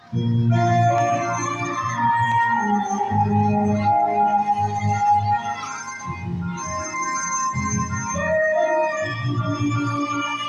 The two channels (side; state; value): both; identical; correlation 1.00